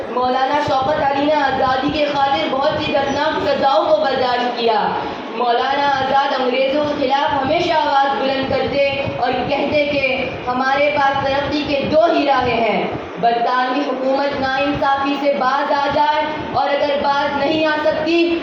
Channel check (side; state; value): both; identical; correlation 1.00